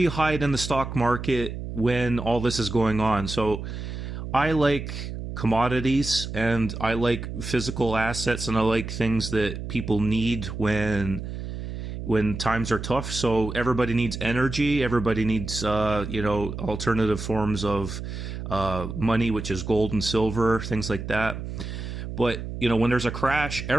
you hide in the stock market when all this is going on? So I like commodities, and I like physical assets, and I like things that people need when times are tough. So everybody needs energy. Everybody needs, alternative forms of money, which is gold and silver, things like that. But, when there's a crash,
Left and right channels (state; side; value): noise; right; hum, 7 dB below the sound